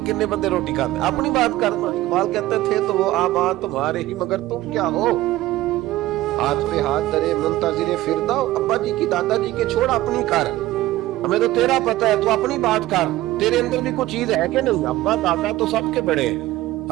کنے بندے روٹی کھاتے، اپنی بات کرنا۔ اقبال کہتے تھے تو وہ آباد تمہارے ہی مگر تم کیا ہو، ہاتھ پہ ہاتھ درے منتظر فردہ، ابا جی کی دادا جی کے چھوڑ اپنی کر، ہمیں تو تیرا پتہ ہے تو اپنی بات کر، تیرے اندر بھی کوئی چیز ہے کہ نہیں؟ ابا دادا تو سب کے بڑے ہیں،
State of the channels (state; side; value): quieter; left; 16.3 dB